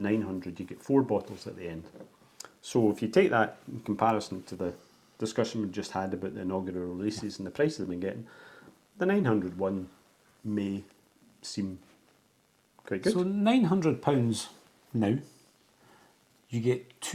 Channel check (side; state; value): both; identical; correlation 1.00